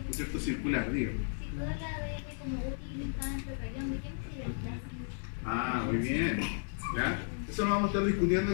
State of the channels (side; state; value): right; silent; digital silence